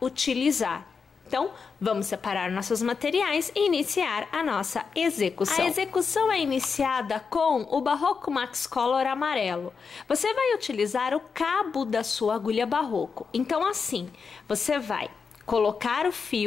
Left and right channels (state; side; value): quieter; right; 5.5 dB